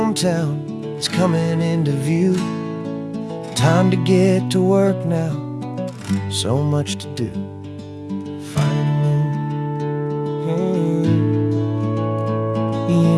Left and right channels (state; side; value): identical; both; correlation 1.00